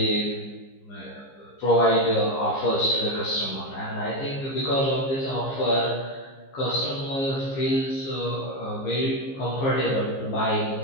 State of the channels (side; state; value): right; late; 15 ms